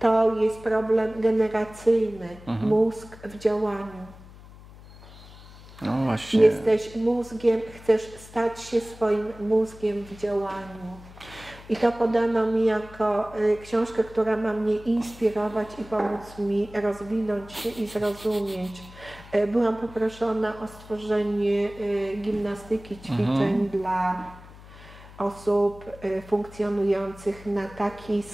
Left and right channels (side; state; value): left; noise; hum, 19 dB below the sound